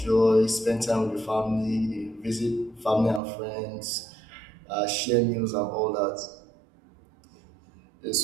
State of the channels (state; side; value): drops out; left; at 3.2 s